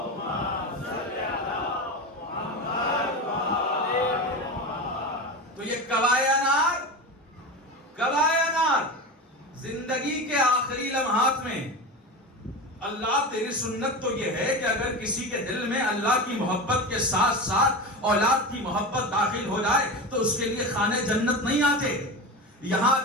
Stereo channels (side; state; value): both; normal; correlation 0.24